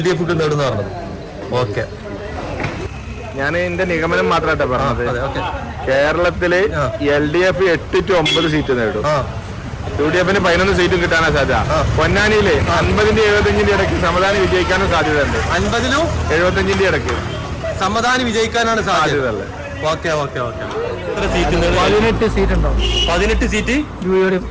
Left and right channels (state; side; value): identical; both; correlation 1.00